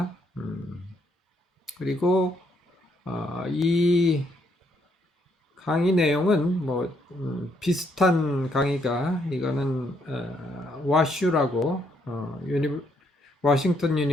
그리고 이 강의 내용은 뭐 비슷한 강의가 이거는 와슈라고 워싱턴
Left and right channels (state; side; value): normal; both; correlation 0.73